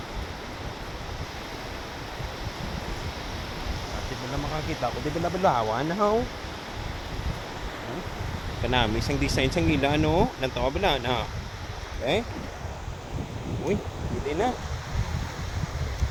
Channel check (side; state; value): both; identical; correlation 1.00